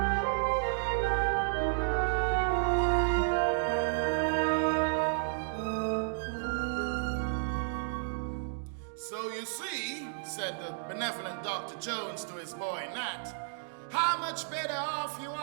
So you see, said the benevolent Dr. Jones to his boy Nat, how much better off you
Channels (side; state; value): left; silent; digital silence